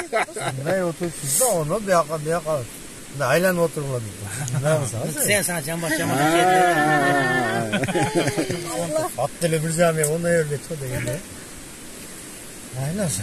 Ne oturuyorsun da onu bir yakal. Ne aylan oturmadı. Ne olsa? Sen sana cam başına at dili bir zami onu öyle tuttu yine. Aylansa.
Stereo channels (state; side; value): identical; both; correlation 1.00